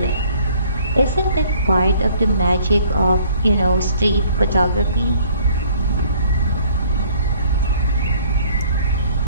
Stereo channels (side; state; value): both; inverted; correlation -0.58